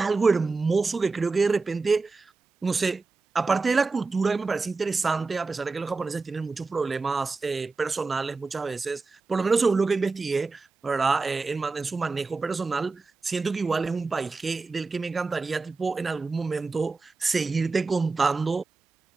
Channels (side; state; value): left; quieter; 4.0 dB